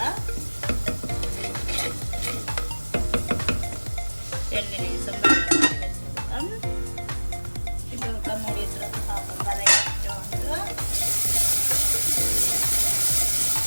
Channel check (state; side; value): inverted; both; correlation -1.00